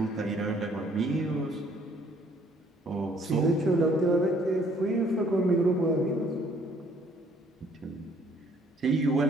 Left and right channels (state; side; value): normal; both; correlation 0.62